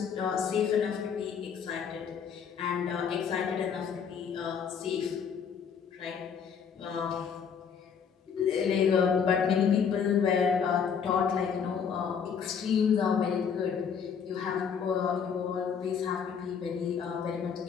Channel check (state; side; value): quieter; right; 7.0 dB